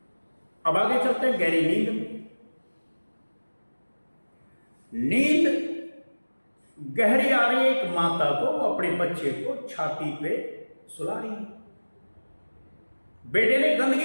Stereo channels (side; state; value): both; inverted; correlation -1.00